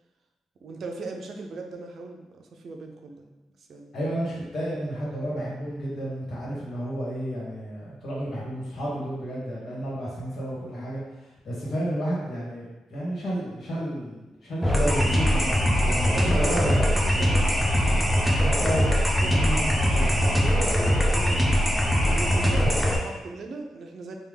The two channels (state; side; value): normal; both; correlation 0.90